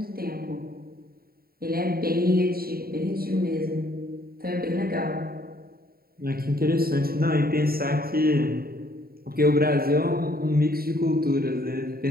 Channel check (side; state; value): left; late; 0.44 ms